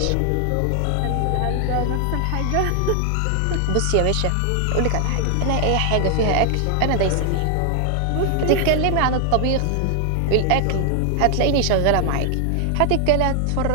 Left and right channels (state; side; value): different; both; correlation 0.00